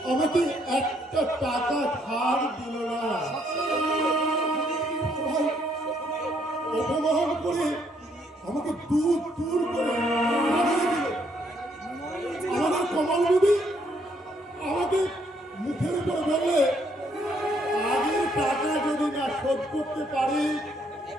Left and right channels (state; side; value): normal; both; correlation 0.70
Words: একটা টাকা ধার দিল না, অপমান করে আমাকে দূর দূর করে আমাদের কমল নদী আমাকে মুখের উপর বললে আগে টাকা যদি না শোধ করতে পারি